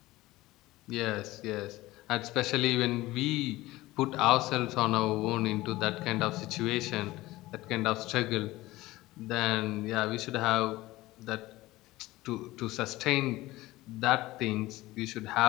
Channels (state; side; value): quieter; right; 18.3 dB